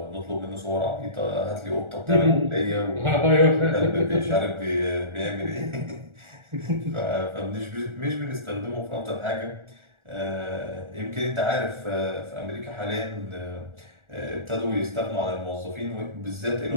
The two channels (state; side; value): late; left; 1.4 ms